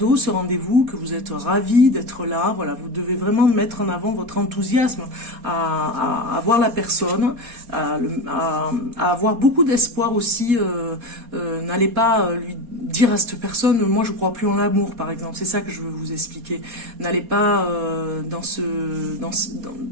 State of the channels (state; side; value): late; left; 4.2 ms